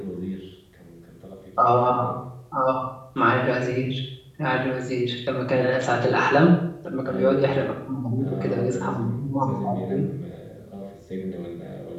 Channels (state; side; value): identical; both; correlation 1.00